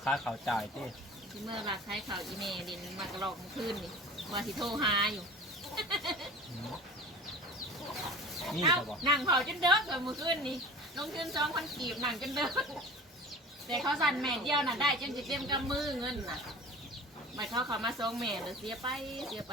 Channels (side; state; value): both; normal; correlation 0.38